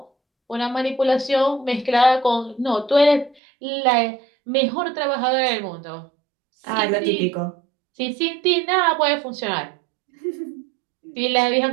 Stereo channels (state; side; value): drops out; left; at 3.4 s